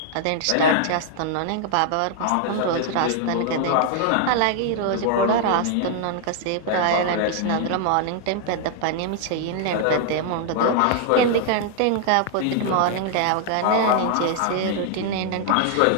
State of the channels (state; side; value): different; both; correlation 0.00